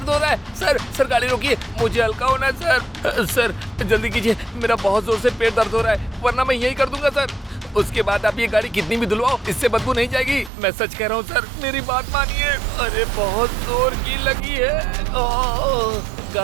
हो रहा है। सर गाड़ी रोकिए, मुझे हल्का होना है सर। जल्दी कीजिए, मेरा बहुत जोर से पेट दर्द हो रहा है, वरना मैं यही कर दूंगा सर। उसके बाद आप ये गाड़ी कितनी भी धुलवाओ, इससे बदबू नहीं जाएगी। मैं सच कह रहा हूँ सर, मेरी बात मानिए। अरे बहुत जोर की लगी है।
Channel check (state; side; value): drops out; left; at 10.5 s